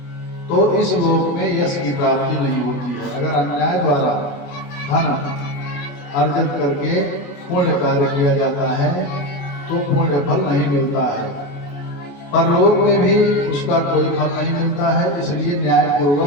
तो इस लोक में यश की प्राप्ति नहीं होती है। अगर अन्याय द्वारा धन अर्जित करके पुण्य कार्य किया जाता है तो पुण्य फल नहीं मिलता है, परलोक में भी उसका कोई फल नहीं मिलता है। इसलिए न्याय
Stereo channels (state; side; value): late; right; 28 ms